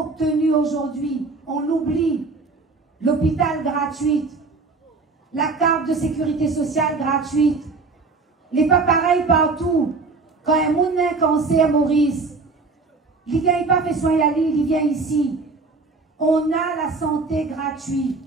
aujourd'hui, on l'oublie, l'hôpital gratuit, la carte de sécurité sociale gratuite, les pas pareils partout. Quand un monde a un cancer, Maurice, il ne vient pas fait soin à l'île, il vient ici. On a la santé gratuite.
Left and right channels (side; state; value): left; quieter; 3.9 dB